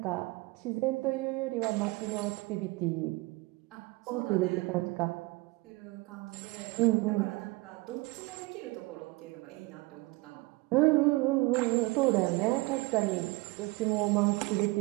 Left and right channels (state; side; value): quieter; left; 23.0 dB